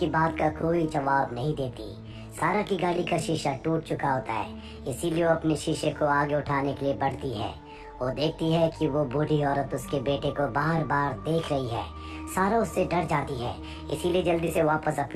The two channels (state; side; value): identical; both; correlation 1.00